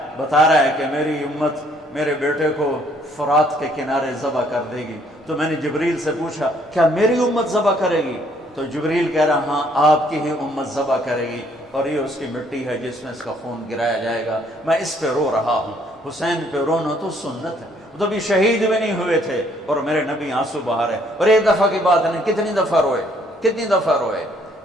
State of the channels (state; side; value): normal; both; correlation 0.65